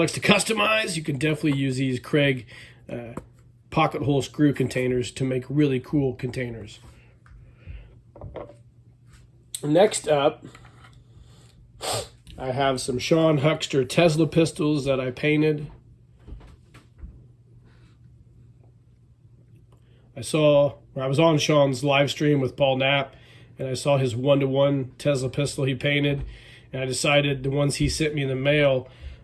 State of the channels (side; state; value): both; identical; correlation 1.00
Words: to customize, you can definitely use these Craig pocket hole screw containers to make really cool containers. Next up, I have some Sean Huckster Tesla pistols that I painted. I was on Sean's live stream with Paul Knapp, and I saw his 1-to-1 Tesla pistol he painted, and I decided the ones he sent me in the mail,